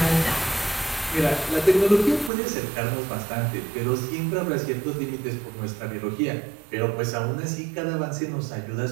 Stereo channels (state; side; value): drops out; left; at 2.3 s